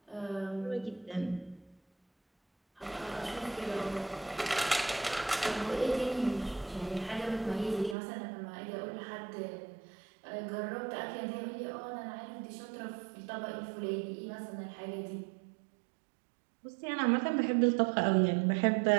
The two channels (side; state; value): left; drops out; at 8.0 s